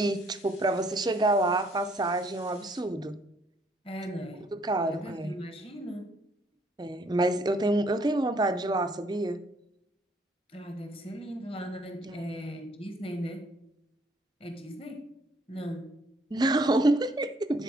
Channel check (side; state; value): both; normal; correlation 0.64